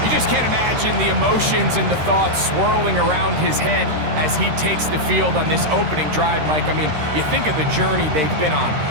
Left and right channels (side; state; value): left; late; 13 ms